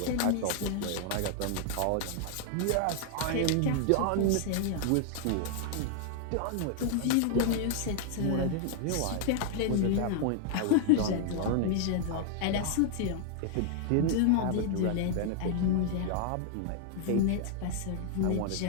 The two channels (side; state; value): both; different; correlation 0.00